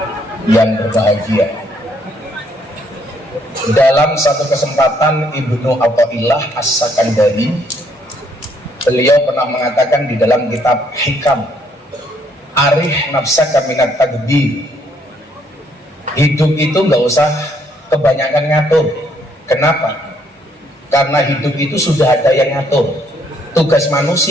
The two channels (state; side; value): normal; both; correlation 0.69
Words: yang berbahagia. Dalam satu kesempatan Ibnu Athaillah As-Sakandari, beliau pernah mengatakan di dalam kitab Hikam, arih nafsaka minat tadbir, hidup itu nggak usah kebanyakan ngatur. Kenapa? Karena hidup itu sudah ada yang ngatur. Tugas